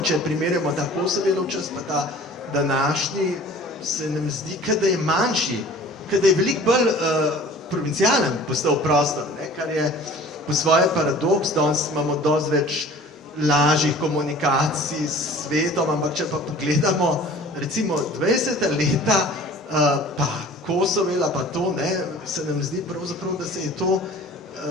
primerjamo ta Kosovelov čas, pa ta današnji, se nam zdi, da je manjši, da je veliko bolj provincialen postal prostor, ne, kar je po svoje paradoks, danes imamo dosti več lažjih komunikacij s svetom, ampak če pa pogledamo recimo 20. leta, pa Kosovela, pa to, ne, se nam zdi pravzaprav,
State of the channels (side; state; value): both; normal; correlation 0.45